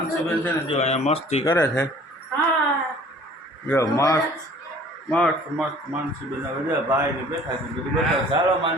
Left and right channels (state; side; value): normal; both; correlation 0.51